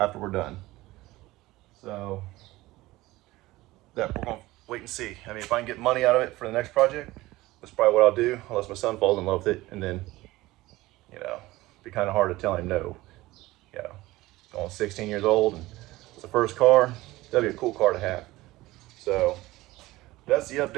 we're done. So that we're going to wait and see. I mean, if I can get money out of it for the next project, that's probably what I'll do, unless my son falls in love with it, and then, you know, it'd be kind of hard to tell him no. You know, going 16 years old, and it's the first car, that'd be a cool car to have. So that's the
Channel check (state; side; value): quieter; left; 18.5 dB